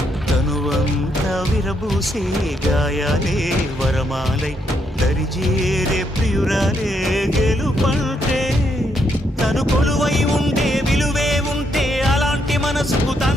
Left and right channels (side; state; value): both; normal; correlation 0.76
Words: తనువంతా విరబూసే గాయాలే వరమాలై దరిజేరే ప్రియురాలే గెలుపంటే తను కొలువై ఉంటే విలువే ఉంటే అలాంటి మనసుకు